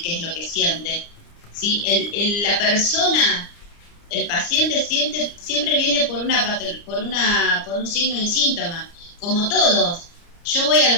qué es lo que siente, ¿sí? La persona, el paciente siempre viene por un signo y síntoma, como todos. Yo voy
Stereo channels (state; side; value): late; right; 29 ms